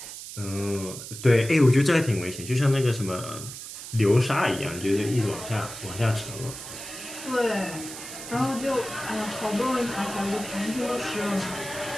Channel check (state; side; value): noise; right; hiss, 11 dB below the sound